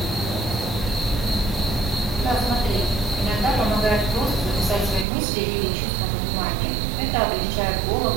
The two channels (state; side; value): drops out; left; at 5.1 s